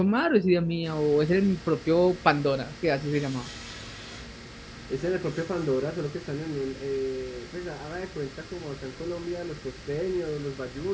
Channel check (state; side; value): identical; both; correlation 1.00